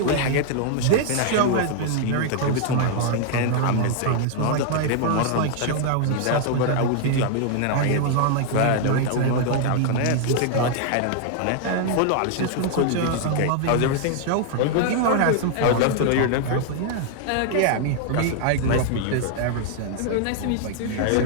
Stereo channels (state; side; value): different; both; correlation 0.00